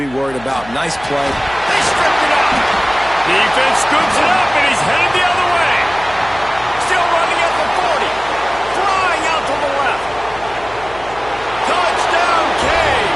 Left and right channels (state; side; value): noise; left; hum, 19 dB below the sound